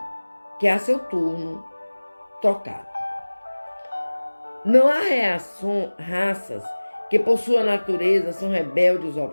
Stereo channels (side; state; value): both; inverted; correlation -1.00